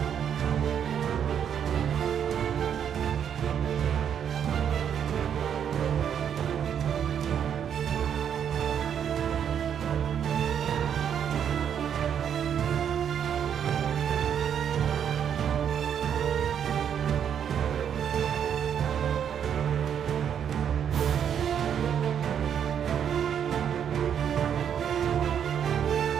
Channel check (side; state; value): left; quieter; 8.6 dB